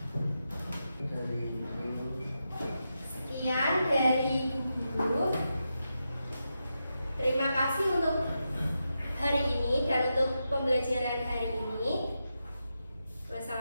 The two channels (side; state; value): both; inverted; correlation -0.87